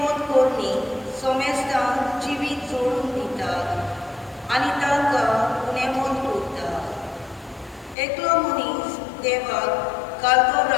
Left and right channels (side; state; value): right; drops out; at 8.0 s